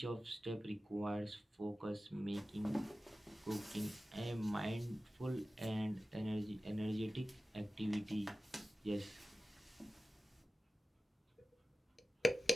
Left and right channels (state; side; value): normal; both; correlation 0.95